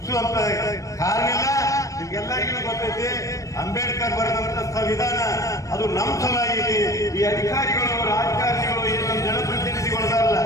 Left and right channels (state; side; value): late; right; 0.16 ms